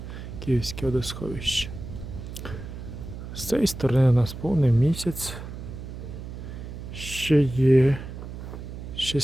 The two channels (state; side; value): noise; right; hum, 10 dB below the sound